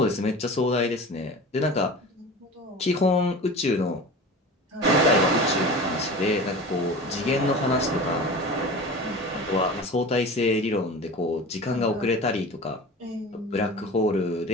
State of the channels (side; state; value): both; normal; correlation 0.35